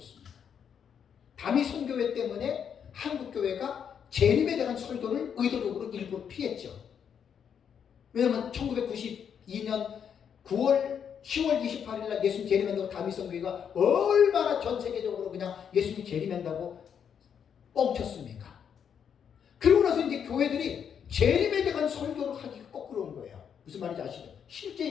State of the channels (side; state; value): right; quieter; 7.8 dB